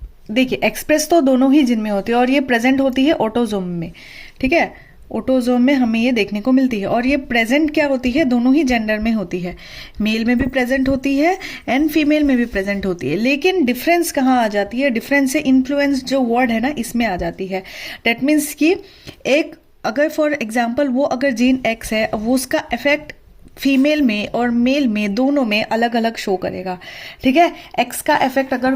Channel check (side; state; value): both; identical; correlation 1.00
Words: देखिए एक्सप्रेस तो दोनों ही जिन में होती है और ये प्रेजेंट होती है ऑटोजोम में। ठीक है, ऑटोजोम में हमें ये देखने को मिलती है और ये प्रेजेंट क्या होती है, दोनों ही जेंडर में होती है। मेल में भी प्रेजेंट होती है एंड फीमेल में भी प्रेजेंट होती है। लेकिन डिफरेंस कहाँ आ जाती है, डिफरेंस से इन्फ्लुएंस जो वर्ड है ना इसमें आ जाती है। डेट मीन्स कि एक अगर फॉर एग्जाम्पल वो अगर जीन एक्स है, वो उसका इफेक्ट फीमेल में और मेल में दोनों में अलग अलग शो करेगा। ठीक है, एक्स का इफेक्ट अगर